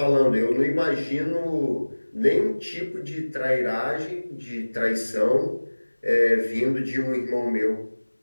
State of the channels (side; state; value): both; inverted; correlation -1.00